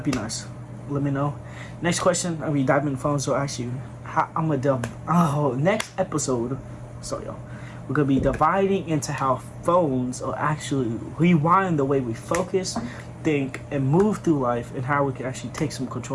be nice. Let me know. Next question, I'll be diving in phones. So actually, I'm gonna next episode. Sorry, y'all. We're gonna be dividing into how phones are actually rewiring the way we focus, think, and move through life, and how we can actually take some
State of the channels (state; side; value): identical; both; correlation 1.00